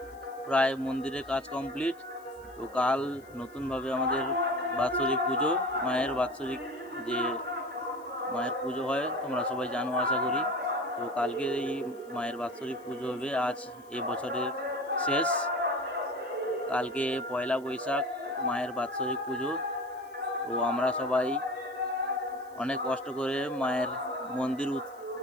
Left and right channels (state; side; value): noise; left; hiss, 28 dB below the sound